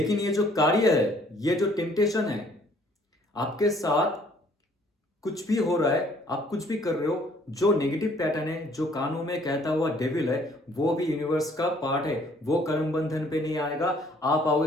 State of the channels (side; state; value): both; normal; correlation 0.61